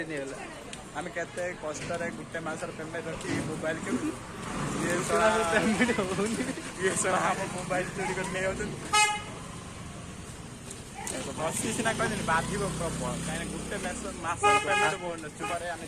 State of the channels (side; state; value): both; identical; correlation 1.00